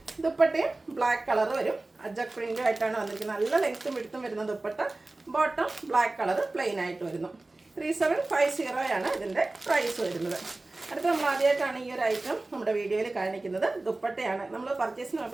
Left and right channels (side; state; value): left; quieter; 3.0 dB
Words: ദുപ്പട്ടയും ബ്ലാക്ക് കളർ വരും. അജക് പ്രിൻ്റും ആയിട്ടാണ് വന്നിരിക്കുന്നത്. നല്ല ലെങ്ത്തും വിടുത്തും വരുന്ന dupatta. Bottom black colour plain ആയിട്ട് വരുന്നു. 3750 ആണ് ഇതിൻ്റെ പ്രൈസ് വരുന്നത്. അടുത്ത നമ്മൾ ആദ്യമായിട്ടാണ് ഈ ഒരു ഐറ്റം നമ്മുടെ വീഡിയോയിൽ കാണിക്കുന്നത്. ദുപ്പട്ടയാണ്. നമ്മൾ പർച്ചേസിന്